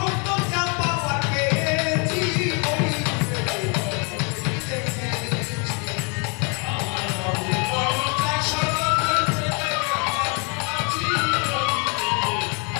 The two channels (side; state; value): right; quieter; 35.3 dB